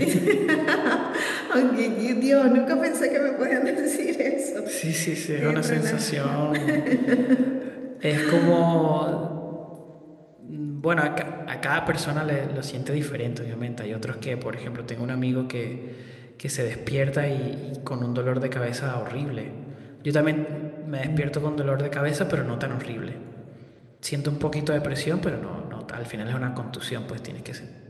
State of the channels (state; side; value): identical; both; correlation 1.00